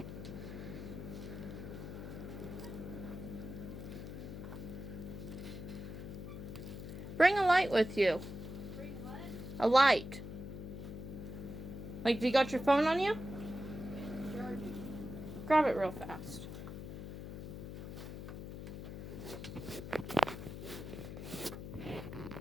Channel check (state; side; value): noise; left; hum, 8 dB below the sound